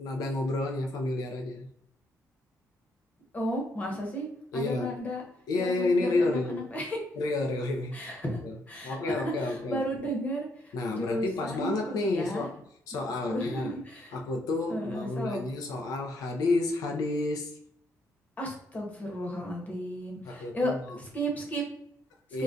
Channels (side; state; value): both; normal; correlation 0.73